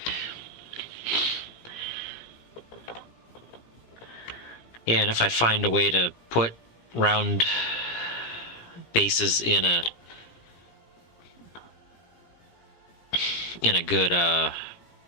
and if I find a way to put round bases in a good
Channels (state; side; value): late; right; 17 ms